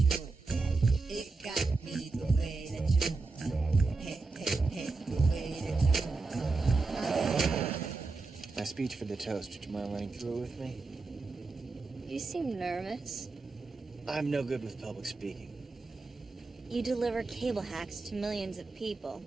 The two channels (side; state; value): left; quieter; 3.8 dB